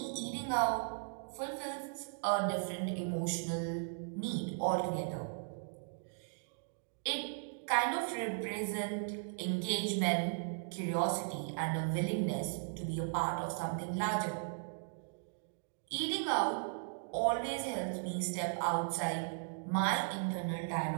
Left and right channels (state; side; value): silent; left; digital silence